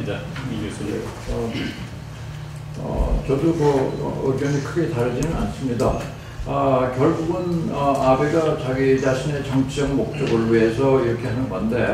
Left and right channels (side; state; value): both; identical; correlation 1.00